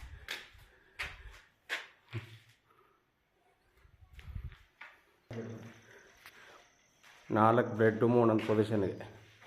ನಾಲ್ಕು ಬೆಡ್ರೂಮು ಒಂದೊಂದು ಪೊಸಿಷನ್ಗೆ.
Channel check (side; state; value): both; identical; correlation 1.00